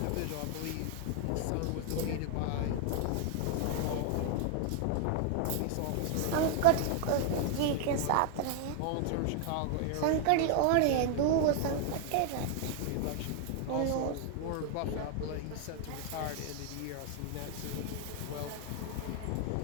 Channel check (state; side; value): different; both; correlation 0.00